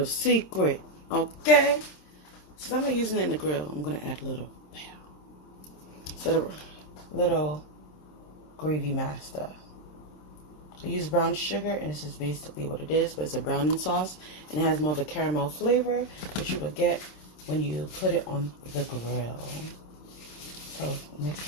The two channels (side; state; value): right; late; 26 ms